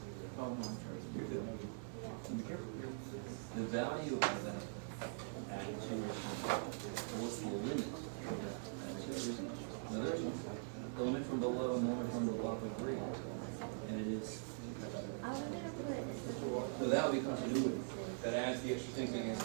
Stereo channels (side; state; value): left; silent; digital silence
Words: The value of that what's the limit? The limit from below and the limit from above are 3. And it is. So that would be continuity. That adds the extra thing against